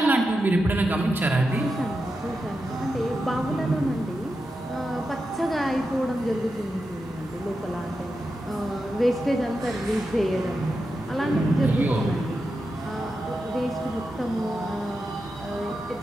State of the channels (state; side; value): normal; both; correlation 0.89